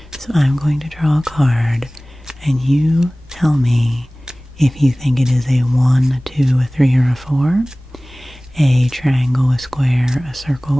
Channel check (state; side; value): normal; both; correlation 0.98